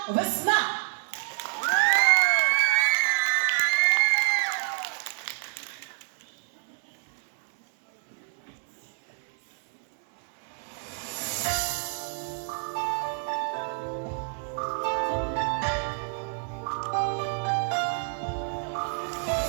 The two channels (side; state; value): left; silent; digital silence